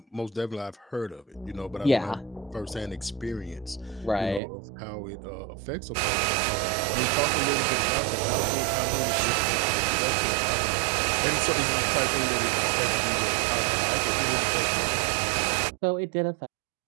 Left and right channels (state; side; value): drops out; left; at 4.4 s